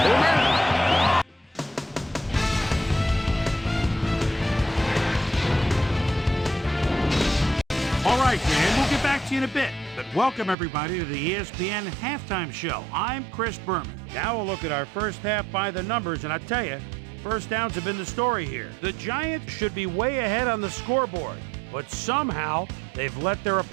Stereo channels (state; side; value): drops out; left; at 10.6 s